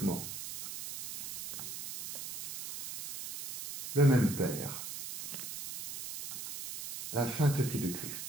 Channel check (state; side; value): noise; right; hiss, 8 dB below the sound